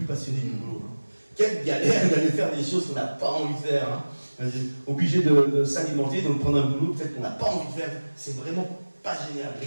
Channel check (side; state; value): both; inverted; correlation -1.00